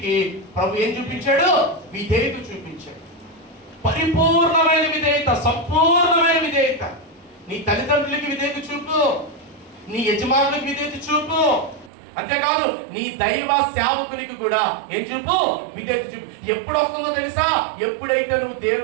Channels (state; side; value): drops out; left; at 11.9 s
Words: ప్రభు ఏం చూపించాడు? విధేయత చూపించాడు. పరిపూర్ణమైన విధేయత, సంపూర్ణమైన విధేయత. నీ తల్లిదండ్రులకి విధేయత చూపు, నీ యజమానులకు విధేయత చూపు. అంతేకాదు నీ దైవ సేవకునికి కూడా ఏం చూపు? విధేయత చూపు. ఎప్పుడు వస్తుందో తెలుసా? ఎప్పుడైతే నువ్వు